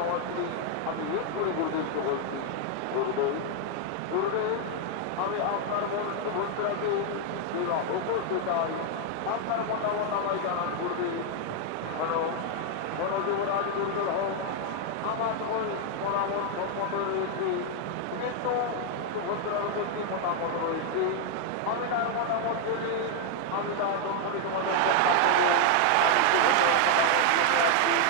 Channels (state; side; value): different; both; correlation 0.00